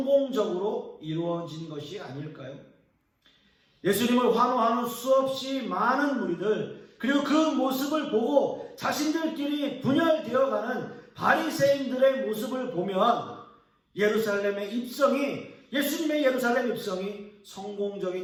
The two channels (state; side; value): identical; both; correlation 1.00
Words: 이루어진 것이 아닐까요? 예수님을 환호하는 수없이 많은 무리들, 그리고 그 모습을 보고 자신들끼리 분열되어가는 바리새인들의 모습을 보면 예수님의 예루살렘 입성이